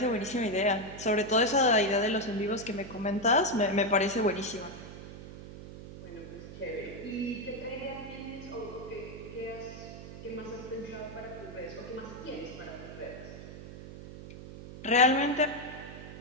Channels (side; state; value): right; noise; hum, 13 dB below the sound